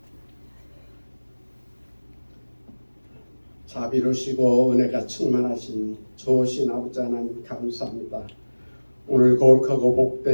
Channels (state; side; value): inverted; both; correlation -1.00